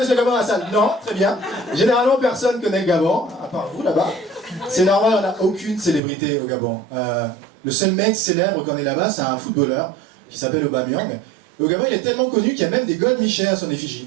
le Gabon dans la salle? Non, très bien. Généralement, personne connaît le Gabon, à part vous là-bas. C'est normal, on n'a aucune célébrité au Gabon. Le seul mec célèbre qu'on est là-bas, c'est un footballeur qui s'appelle Aubameyang. Et au Gabon, il est tellement connu qu'il y a même des gold Michel à son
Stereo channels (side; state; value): left; drops out; at 6.0 s